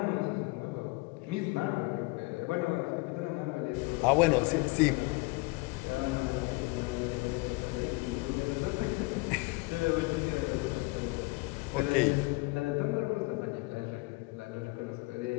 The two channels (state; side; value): quieter; right; 25.1 dB